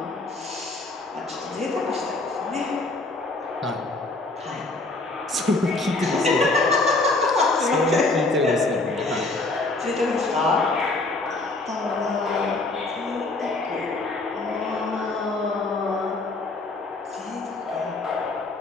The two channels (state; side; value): quieter; right; 3.2 dB